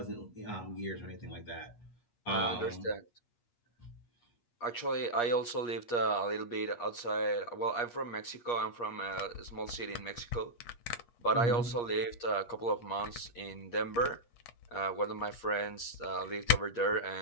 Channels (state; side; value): late; right; 8.4 ms